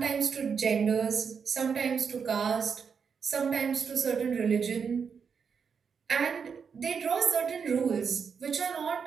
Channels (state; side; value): quieter; left; 6.3 dB